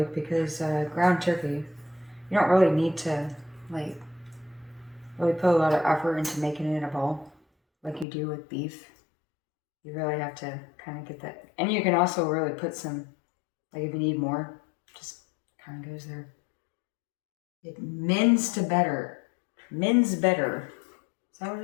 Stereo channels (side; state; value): right; drops out; at 8.1 s